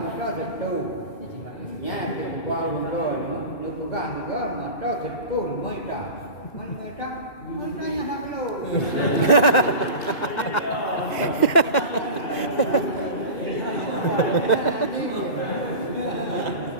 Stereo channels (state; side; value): late; right; 2.1 ms